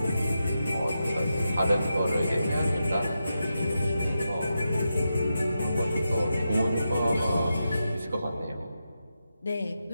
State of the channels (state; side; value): inverted; both; correlation -0.88